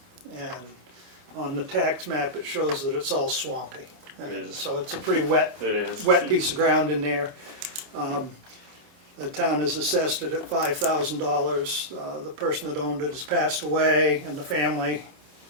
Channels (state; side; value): late; left; 29 ms